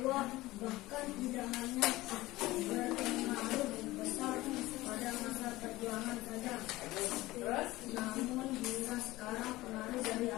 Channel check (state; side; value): quieter; right; 18.4 dB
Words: bahkan tidak hanya berpengaruh besar pada masa perjuangan saja, Terus? namun hingga sekarang pengaruh dari